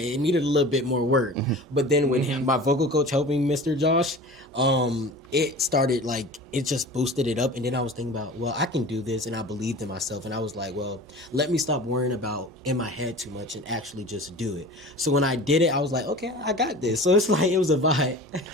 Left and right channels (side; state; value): both; normal; correlation 0.38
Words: needed a little bit more work. But then when my vocal coach helped me, Mr. Josh, it started, like, it just boosted it up. And then I was thinking about, well, I can do this. And I believed in myself. And I was like, well, let me stop worrying about in my head too much and actually just do it. So when I did it, I was like, okay, I got this. So it's like, it was a vibe.